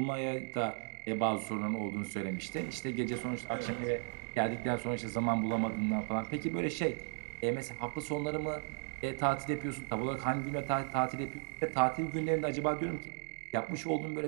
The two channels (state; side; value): silent; left; digital silence